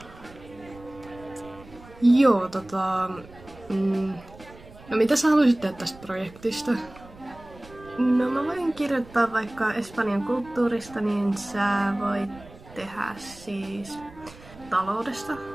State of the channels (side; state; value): right; noise; rumble, 21 dB below the sound